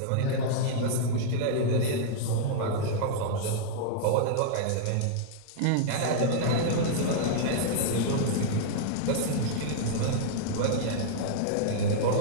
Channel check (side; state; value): both; different; correlation -0.01